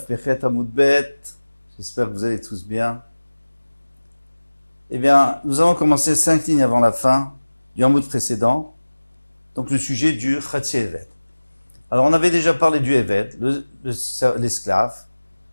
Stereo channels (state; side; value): inverted; both; correlation -1.00